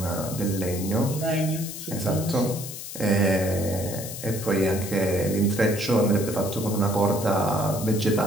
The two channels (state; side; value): noise; left; hiss, 9 dB below the sound